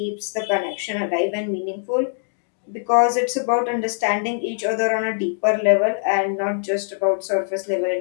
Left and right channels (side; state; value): right; silent; digital silence